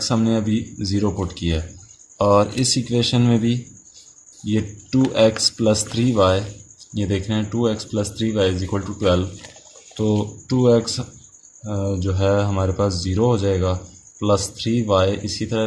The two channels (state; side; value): identical; both; correlation 1.00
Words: हमने अभी 0 पुट किया है, और इस इक्वेशन में भी ये 2x प्लस 3y, ये देख रहे हैं 2x plus 3y is equal to 12, तो 2x जो है हमारे पास 0 हो जाएगा, प्लस 3y इसी तरह